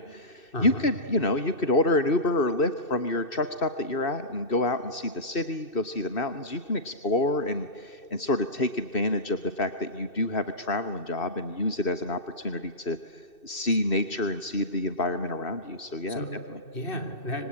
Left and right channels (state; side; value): late; right; 2.6 ms